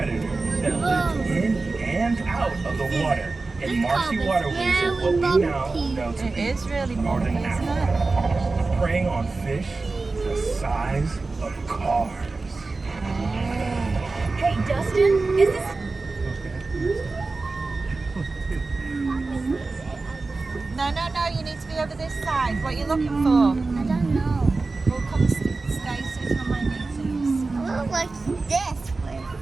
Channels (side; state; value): left; quieter; 3.7 dB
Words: that lived in and out of the water in marshy waterways of what we now know to It be is really northern bumpy, isn't it? Africa, preying on fish the size of cars. Hey, Dustin, is this... No, you need to be over this side. What are you looking for? I don't know. We'll come stay sitting on my knees. I look like this.